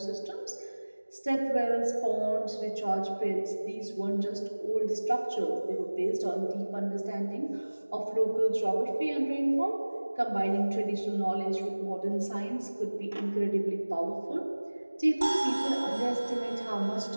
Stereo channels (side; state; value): both; inverted; correlation -1.00